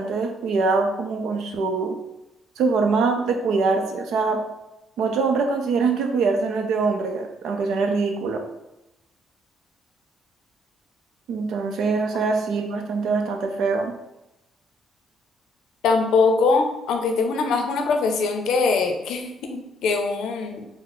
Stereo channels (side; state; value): both; normal; correlation 0.66